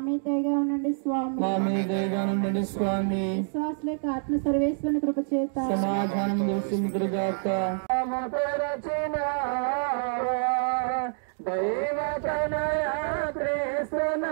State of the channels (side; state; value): left; silent; digital silence